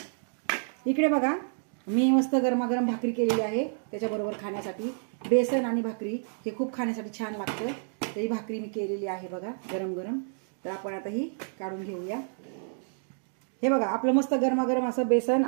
इकडे बघा, मी मस्त गरमागरम भाकरी केलेली आहे त्याच्याबरोबर खाण्यासाठी। बेसन आणि भाकरी हे खूप खाण्यासाठी छान लागतं, तर ही भाकरी मी केलेली आहे बघा, गरम गरम। तर आपण आता ही काढून घेऊया। हे बघा, आपलं मस्त गरमागरम असं बेसन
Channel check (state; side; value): silent; left; digital silence